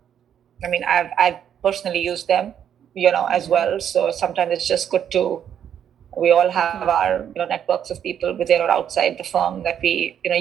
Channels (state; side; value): quieter; left; 9.2 dB